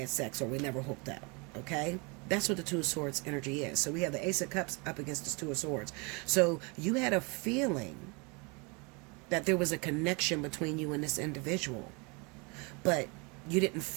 sex or we never hooked up. Okay, that's what the Two of Swords energy is. So we have the Ace of Cups up against the Two of Swords. So you had a feeling that there was a connection between you and this individual, but you didn't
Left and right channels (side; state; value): left; quieter; 30.5 dB